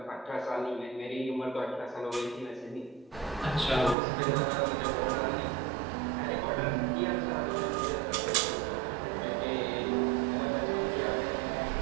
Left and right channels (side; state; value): left; drops out; at 4.0 s